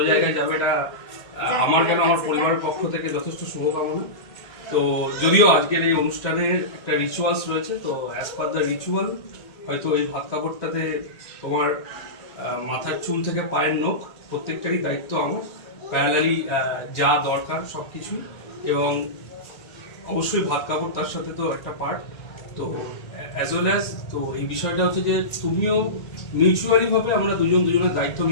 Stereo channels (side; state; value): right; late; 1.8 ms